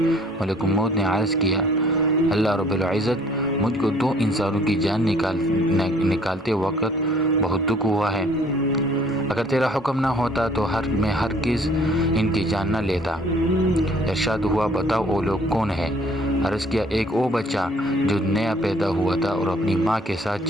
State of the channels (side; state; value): both; normal; correlation 0.57